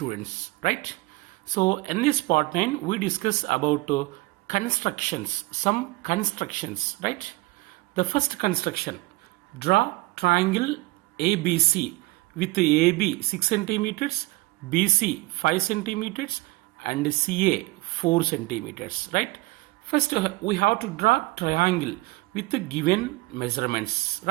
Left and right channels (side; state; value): left; quieter; 21.9 dB